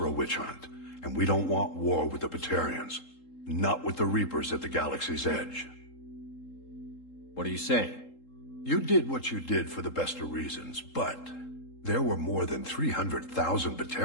a witch hunt. And we don't want war with the Batarians. Not with the Reapers at the galaxy's edge. What are you saying? You did what you did for the best of reasons, but there were more than 300,000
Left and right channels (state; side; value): late; right; 3.7 ms